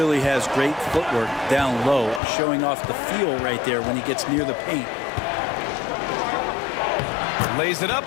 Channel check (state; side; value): drops out; right; at 2.2 s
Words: has great footwork down low, showing off the feel right there when he gets near the paint. Lays it up